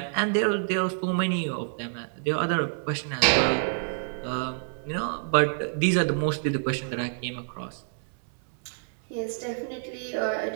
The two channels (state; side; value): silent; left; 60 dB below the other